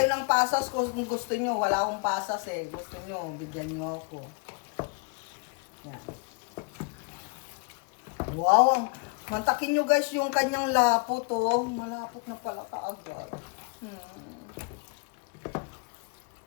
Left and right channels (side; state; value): right; quieter; 33.6 dB